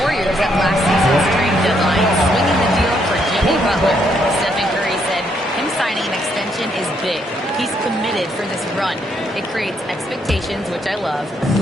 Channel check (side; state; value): both; normal; correlation 0.74